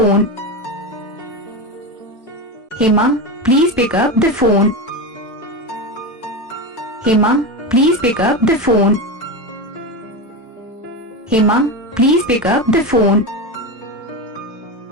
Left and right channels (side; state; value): both; normal; correlation 0.18